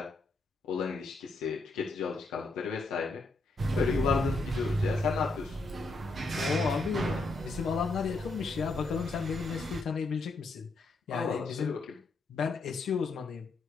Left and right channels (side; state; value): right; quieter; 3.2 dB